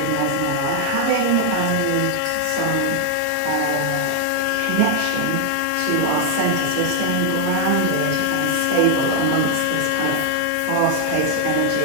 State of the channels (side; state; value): both; different; correlation 0.00